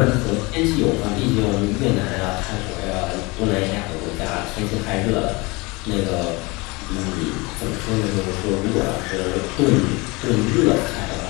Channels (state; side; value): quieter; right; 25.2 dB